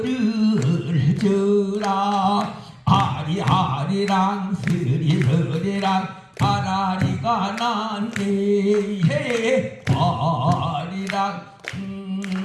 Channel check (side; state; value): both; identical; correlation 1.00